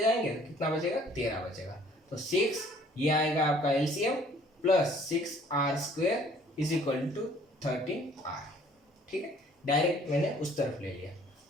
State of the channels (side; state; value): both; normal; correlation 0.57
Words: जाएंगे, कितना बचेगा? 13 बचेगा। तो 6 ये आएगा आपका एलसीएम प्लस 6r² = 13r। ठीक है, डायरेक्ट मैंने उस तरफ ले लिया,